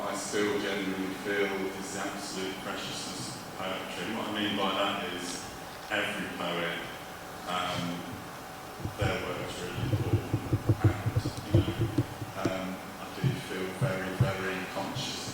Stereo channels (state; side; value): identical; both; correlation 1.00